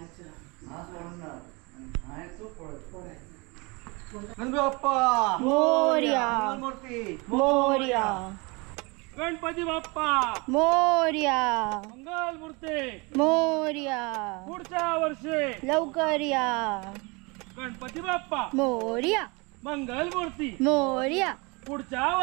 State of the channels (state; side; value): quieter; left; 27.7 dB